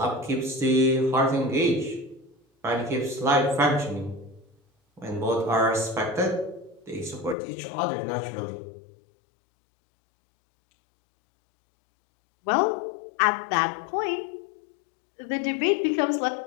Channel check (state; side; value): drops out; right; at 7.4 s